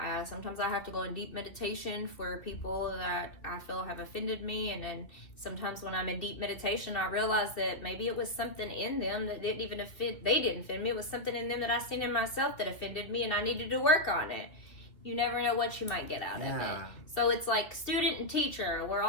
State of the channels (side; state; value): right; late; 2.7 ms